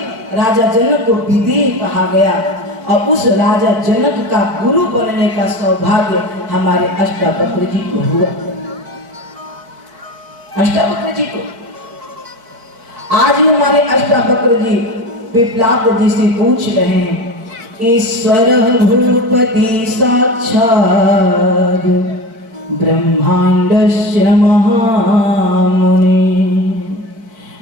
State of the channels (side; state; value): left; late; 4.4 ms